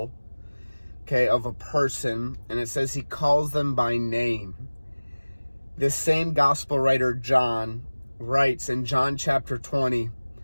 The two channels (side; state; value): both; inverted; correlation -1.00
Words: okay, of a person, and it says he calls them by name. This same gospel writer, John, writes in John chapter 20